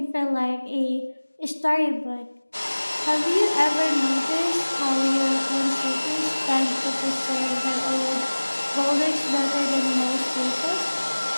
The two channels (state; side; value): inverted; both; correlation -1.00